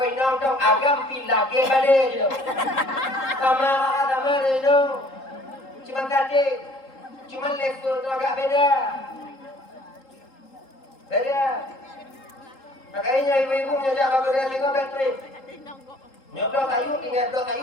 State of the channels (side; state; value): right; late; 3.8 ms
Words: inang tong agam pilage balik je. Sama je. Cuma tadi, cuma level tu agak beda. Makanya ibu-ibu menyojak bak kedai tengok baterai. Nyodok kayu, tinggal dok kayu